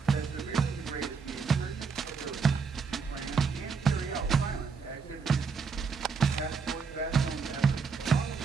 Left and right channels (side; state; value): left; quieter; 5.3 dB